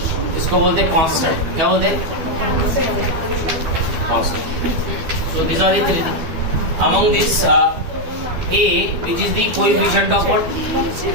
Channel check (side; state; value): left; late; 12 ms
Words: इसको बोलते हैं कांस्टेंट. क्या बोलते हैं? Constant. So these are the three. Among this, A, which is the coefficient of what?